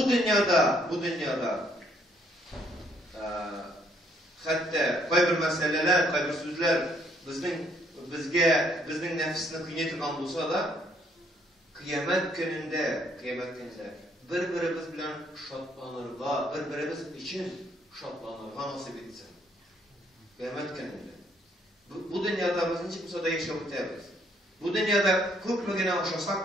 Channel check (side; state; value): both; normal; correlation 0.67